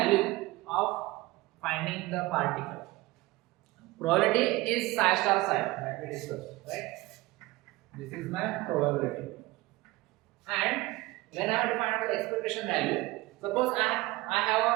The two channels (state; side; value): quieter; left; 20.0 dB